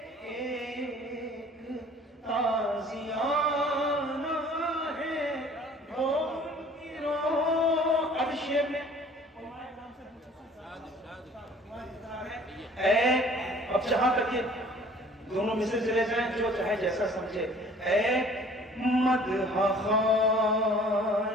ایک تازیانہ ہے. وہ ان کی روح. اب شعر میں اب جہاں تک یہ دونوں مثل چلے جائیں جو چاہے جیسا سمجھے. اے مدح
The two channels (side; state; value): both; normal; correlation 0.52